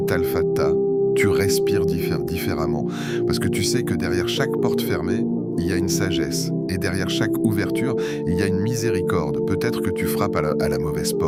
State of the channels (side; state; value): both; identical; correlation 1.00